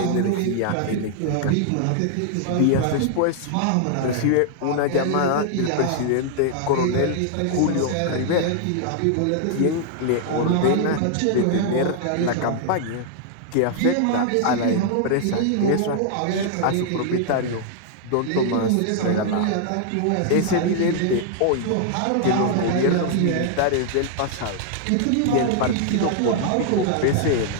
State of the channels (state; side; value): different; both; correlation -0.01